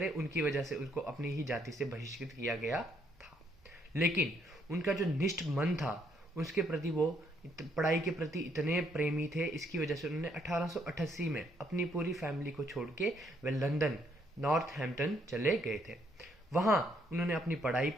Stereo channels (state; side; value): normal; both; correlation 0.70